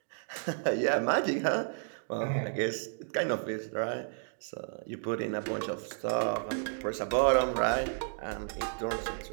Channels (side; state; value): left; silent; digital silence